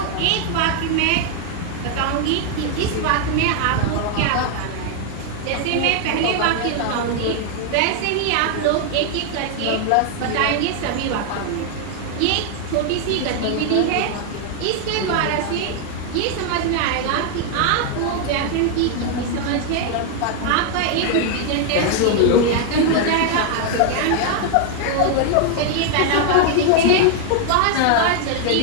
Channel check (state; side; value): different; both; correlation 0.00